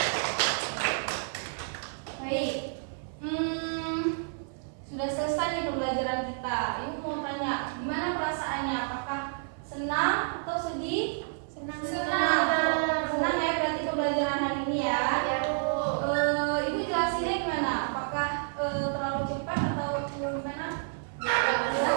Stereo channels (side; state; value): left; silent; 57 dB below the other